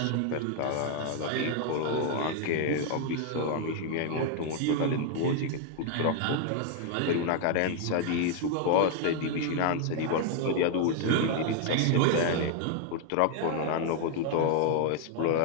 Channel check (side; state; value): both; different; correlation 0.00